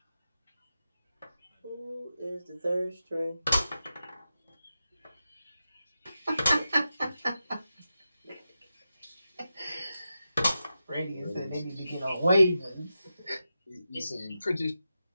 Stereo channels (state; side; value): inverted; both; correlation -0.90